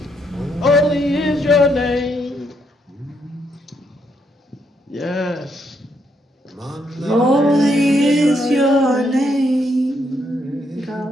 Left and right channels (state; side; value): normal; both; correlation 0.76